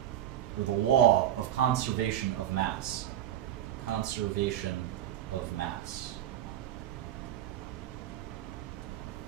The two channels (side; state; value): left; quieter; 11.8 dB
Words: or the law of conservation of mass. Conservation of mass.